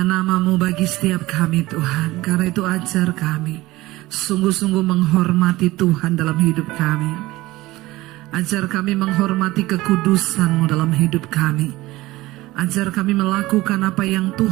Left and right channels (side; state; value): left; quieter; 18.7 dB